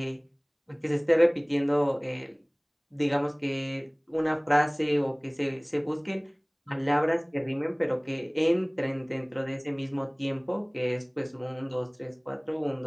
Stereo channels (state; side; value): identical; both; correlation 1.00